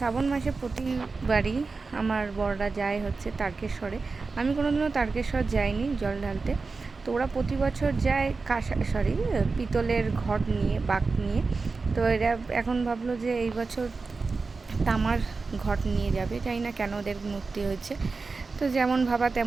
মাসে প্রতিবারই আমার বড়রা যায় হচ্ছে তারকেশ্বরে। আমি কোনোদিনও তারকেশ্বর যাইনি জল ঢালতে। তো ওরা প্রতি বছর যায় পিতলের ঘট নিয়ে, বাঁক নিয়ে। তো এরা এখন ভাবলো যে এই বছর তামার ঘট নিয়ে যাবে, জানি না কেন ওদের মূর্তি হয়েছে। তো যেমন ভাবা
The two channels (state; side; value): quieter; left; 4.2 dB